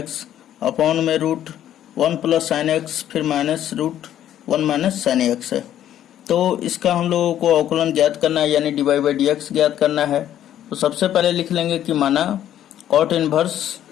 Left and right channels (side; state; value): right; quieter; 11.3 dB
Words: upon में √1 प्लस साइन एक्स, फिर माइनस √1 माइनस साइन एक्स है। तो इसका हम लोगों को अवकलन ज्ञात करना है, यानी dy/dx ज्ञात करना है। तो सबसे पहले लिख लेंगे कि माना कॉट इनवर्स,